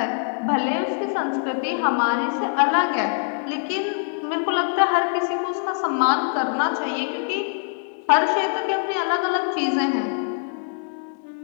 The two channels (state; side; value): silent; right; 57 dB below the other